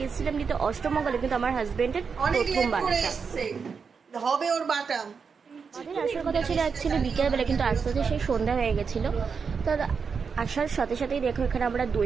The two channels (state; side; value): quieter; left; 5.7 dB